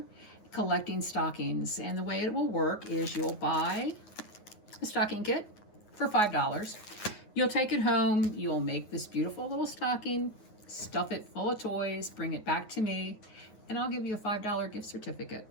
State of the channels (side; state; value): right; late; 9.5 ms